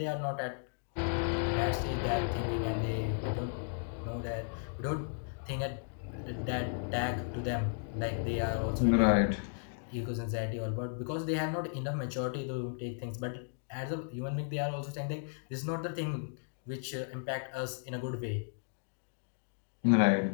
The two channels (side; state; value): right; silent; digital silence